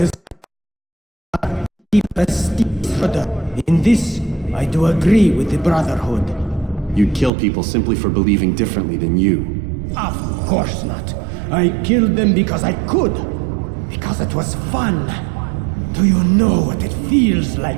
keep a steep further. In this, I do agree with the Brotherhood. You'd kill people simply for believing differently than you. Of course not. I killed them because I could. Because it was fun. Do you know what it feels like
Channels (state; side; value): drops out; left; at 7.3 s